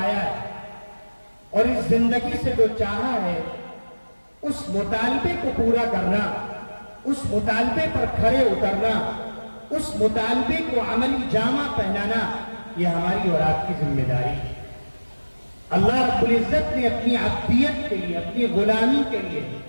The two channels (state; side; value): inverted; both; correlation -1.00